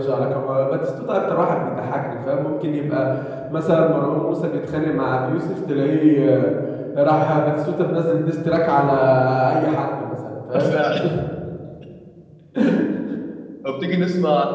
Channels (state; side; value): identical; both; correlation 1.00